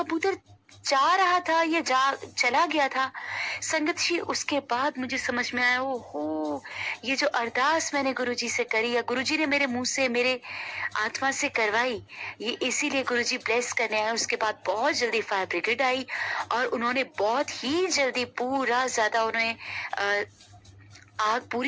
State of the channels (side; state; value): both; identical; correlation 1.00